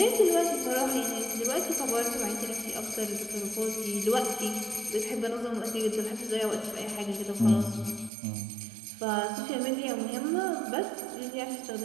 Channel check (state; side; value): drops out; left; at 8.1 s